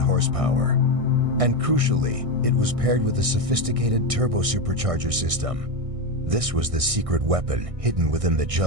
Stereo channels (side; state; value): left; late; 1.6 ms